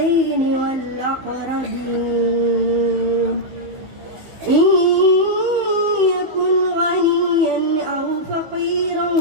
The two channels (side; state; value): left; late; 16 ms